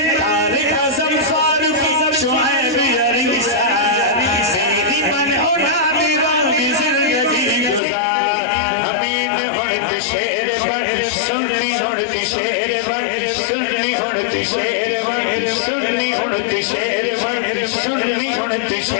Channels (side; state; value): right; drops out; at 7.8 s